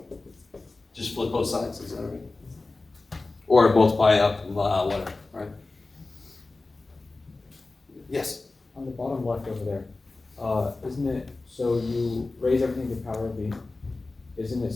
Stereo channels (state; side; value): quieter; right; 3.4 dB